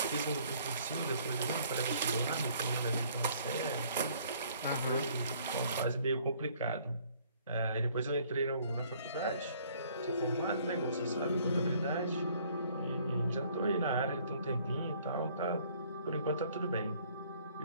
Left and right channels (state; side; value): inverted; both; correlation -0.60